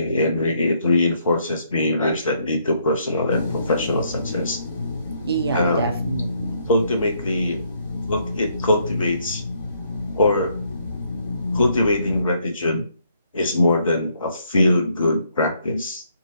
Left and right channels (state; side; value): inverted; both; correlation -0.71